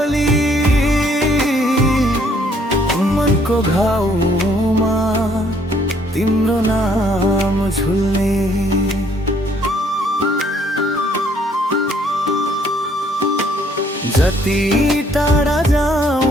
मनको घाउमा तिम्रो नाम झुल्ने जति टाढा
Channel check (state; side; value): normal; both; correlation 0.64